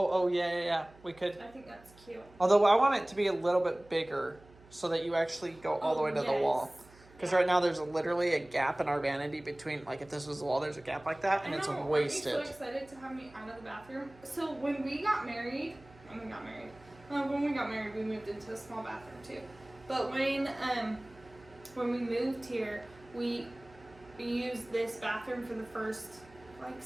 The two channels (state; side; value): noise; right; hum, 24 dB below the sound